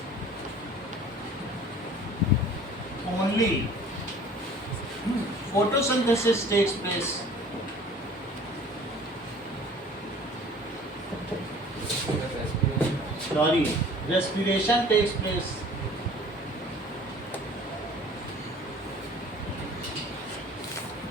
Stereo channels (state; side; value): normal; both; correlation 0.48